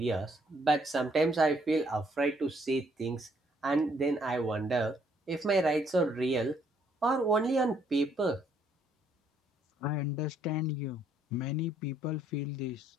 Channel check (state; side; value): normal; both; correlation 0.68